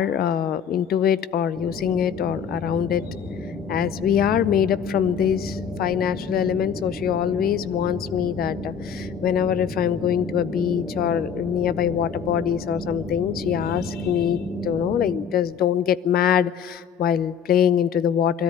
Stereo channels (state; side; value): quieter; right; 7.7 dB